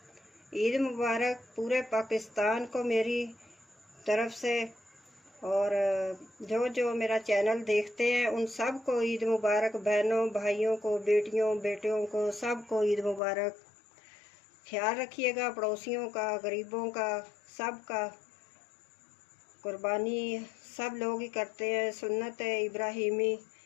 ईद मुबारक पूरे पाकिस्तान को मेरी तरफ से। और जो जो मेरा चैनल देखते हैं उन सब को ईद मुबारक। बहनों भाइयों को, बेटियों बेटियों को, सब को ईद मुबारक। ख्याल रखिएगा पड़ोसियों का, गरीबों का, सब का। कुर्बानी सब लोग ही करते हैं, सुन्नत है इब्राहिमी।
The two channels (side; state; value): right; drops out; at 13.2 s